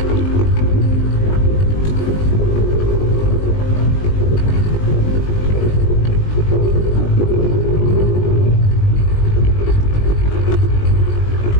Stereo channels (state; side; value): late; right; 20 ms